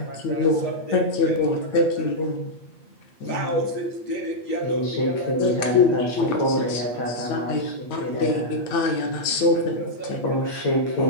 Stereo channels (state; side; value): late; right; 8.6 ms